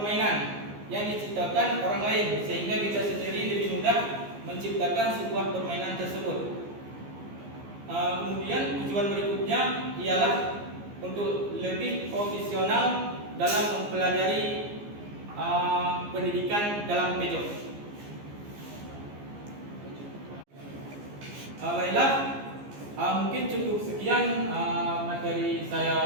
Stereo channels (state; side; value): late; left; 15 ms